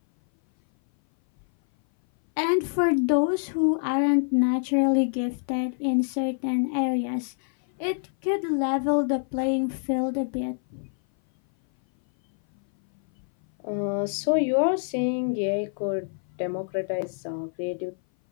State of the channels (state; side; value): silent; right; 58 dB below the other